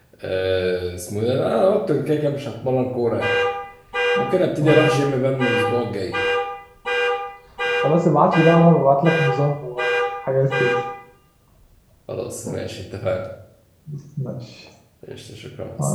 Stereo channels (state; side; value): identical; both; correlation 1.00